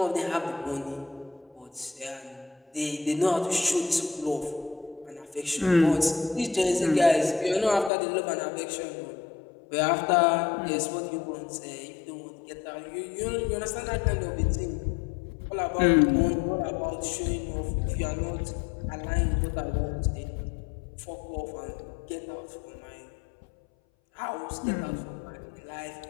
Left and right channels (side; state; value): right; drops out; at 7.9 s